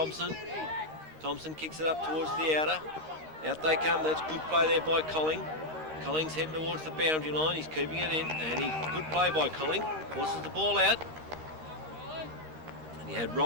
Thompson kicks it up towards the outer. Out they come. That's good play there by Colling. Colling's heading towards the boundary line. He's keeping it in, and good play by Colling. Forces the ball out. And he had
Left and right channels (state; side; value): late; left; 13 ms